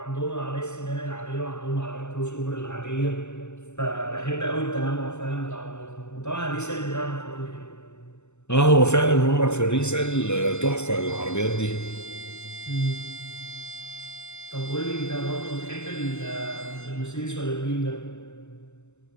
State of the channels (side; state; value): right; late; 0.83 ms